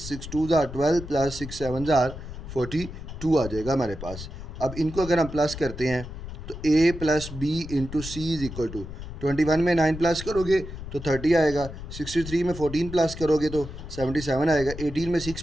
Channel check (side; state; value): left; noise; rumble, 10 dB below the sound